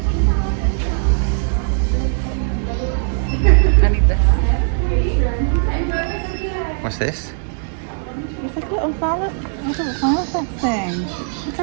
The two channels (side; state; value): left; silent; 67 dB below the other